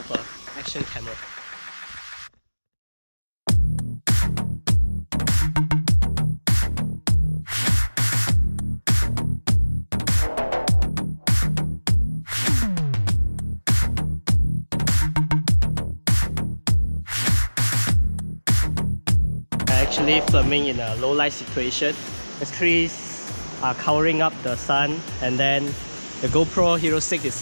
an action camera. Actually filming in a low light situation. The trees are covering up the sun, and then the GoPro Hero 6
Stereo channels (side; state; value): both; inverted; correlation -1.00